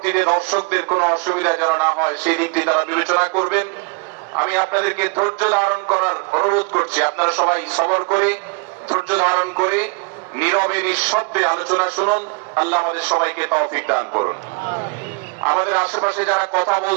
দর্শকদের কোনো অসুবিধা যেন না হয় সেই দিকটি তারা বিবেচনা করবেন। আমি আপনাদেরকে ধৈর্য ধারণ করার অনুরোধ করছি। আপনারা সবাই সবর করে, ধৈর্য ধারণ করে, নীরবে নিঃশব্দে আলোচনা শুনুন। আল্লাহ আমাদের সবাইকে তৌফিক দান করুন। আমাদের আশেপাশে যারা কথা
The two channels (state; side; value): quieter; left; 32.8 dB